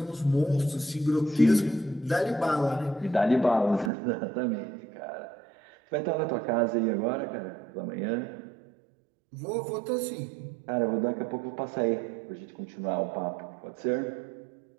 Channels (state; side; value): drops out; left; at 3.9 s